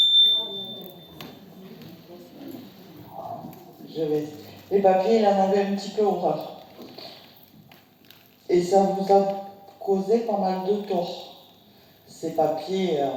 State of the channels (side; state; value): both; identical; correlation 1.00